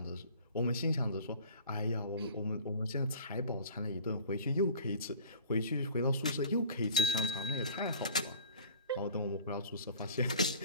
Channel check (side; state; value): both; inverted; correlation -0.45